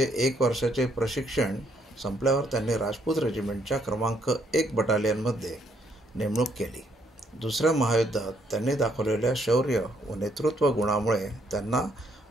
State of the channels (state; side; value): normal; both; correlation 0.71